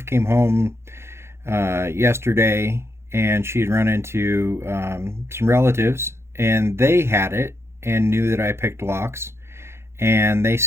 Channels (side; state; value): left; late; 0.12 ms